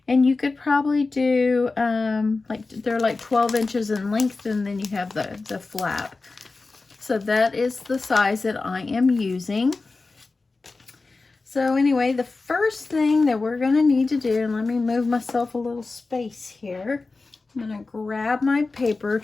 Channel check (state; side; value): quieter; right; 3.7 dB